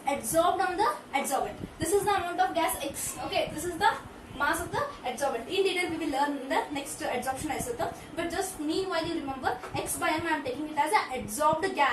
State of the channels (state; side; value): identical; both; correlation 1.00